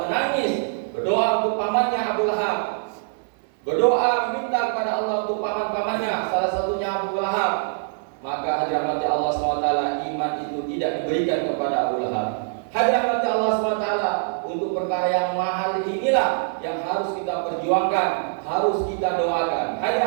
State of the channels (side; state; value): left; silent; 63 dB below the other